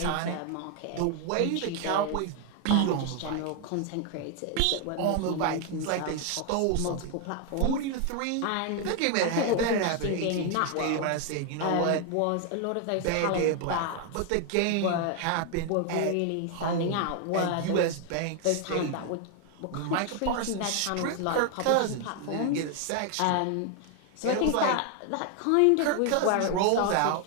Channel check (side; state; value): both; different; correlation 0.01